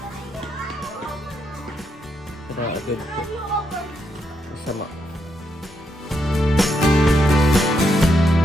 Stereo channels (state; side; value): normal; both; correlation 0.80